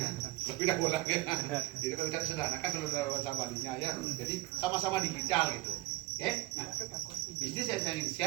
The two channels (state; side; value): quieter; left; 19.2 dB